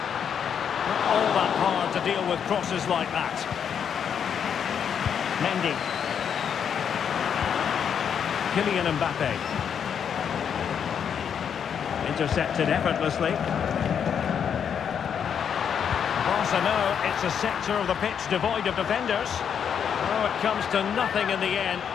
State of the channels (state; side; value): quieter; right; 7.8 dB